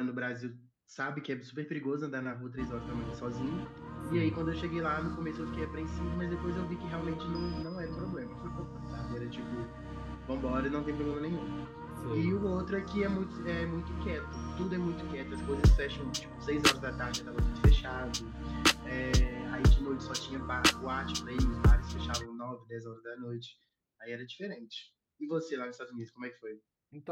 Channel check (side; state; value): both; identical; correlation 1.00